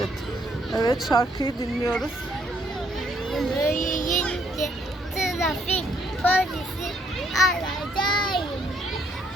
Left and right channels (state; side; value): normal; both; correlation 0.69